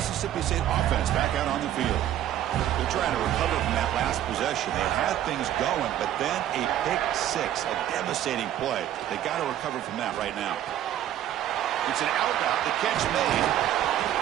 State offense back out on the field. They're trying to recover from that last possession. They had things going, but then a pick six, a devastating play. They got to recover from that right now. It's an out route. The catch made.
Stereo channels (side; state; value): left; quieter; 11.8 dB